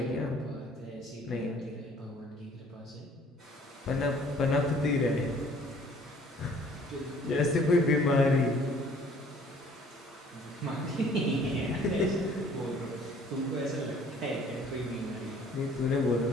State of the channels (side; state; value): both; normal; correlation 0.56